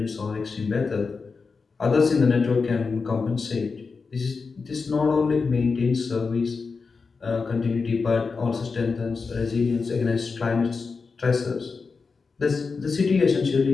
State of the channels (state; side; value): quieter; right; 4.7 dB